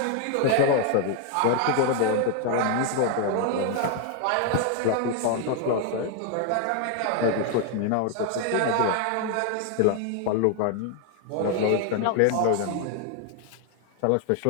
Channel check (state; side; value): different; both; correlation 0.00